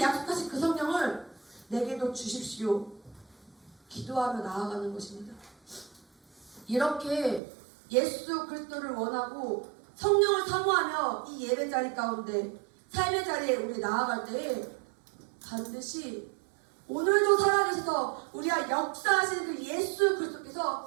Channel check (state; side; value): drops out; left; at 7.4 s